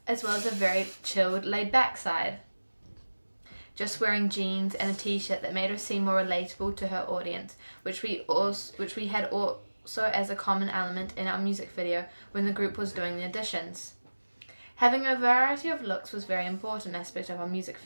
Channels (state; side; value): inverted; both; correlation -1.00